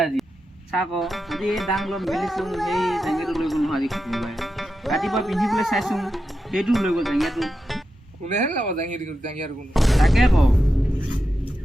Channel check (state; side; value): normal; both; correlation 0.89